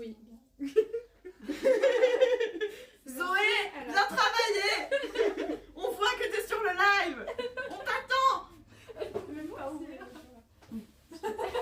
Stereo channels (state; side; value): identical; both; correlation 1.00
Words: Zoé, viens travailler. On voit que t'es sur le live. On t'attend. Même pas ouvert.